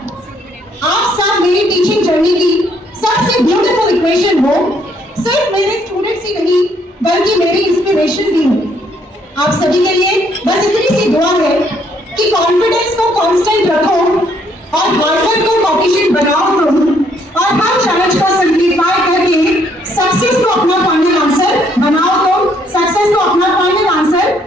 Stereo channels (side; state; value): both; normal; correlation 0.68